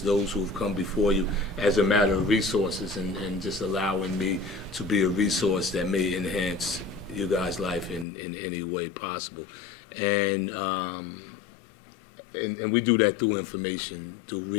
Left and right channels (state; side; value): drops out; right; at 8.1 s